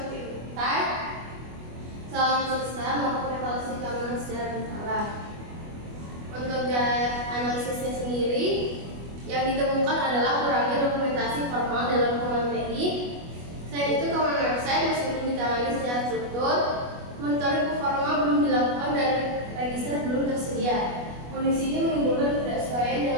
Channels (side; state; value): left; late; 25 ms